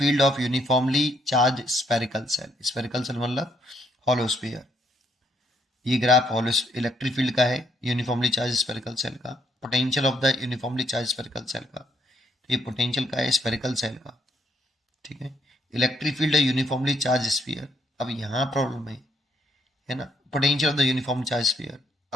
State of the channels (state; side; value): normal; both; correlation 0.71